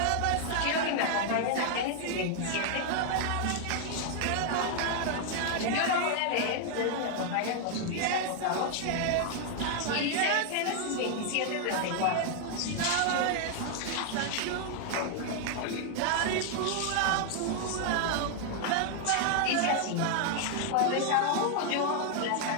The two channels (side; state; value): both; different; correlation 0.00